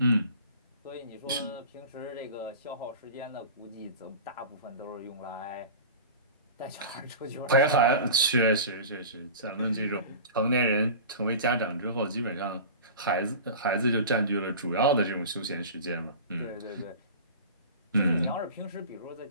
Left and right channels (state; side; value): inverted; both; correlation -0.35